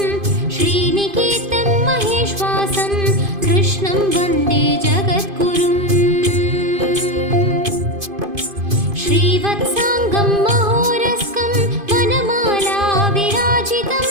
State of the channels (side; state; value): left; late; 2.5 ms